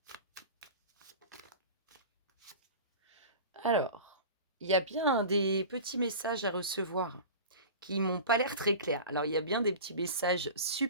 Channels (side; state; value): both; inverted; correlation -0.35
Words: Alors, il y a bien des petits messages à recevoir qui m'ont pas l'air très clairs. Alors, il y a bien des petits messages